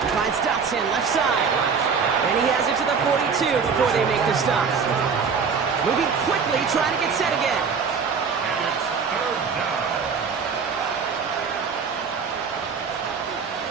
Finds Dotson left side. And he has it to the 42 before they make the stop. Moving quickly, trying to get set again. And it's third down.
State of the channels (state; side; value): quieter; left; 5.8 dB